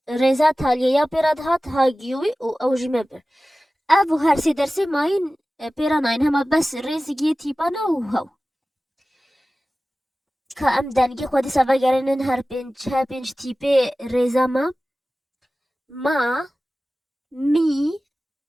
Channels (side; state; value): both; normal; correlation 0.96